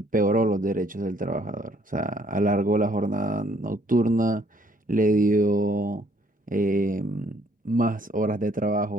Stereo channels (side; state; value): both; normal; correlation 0.64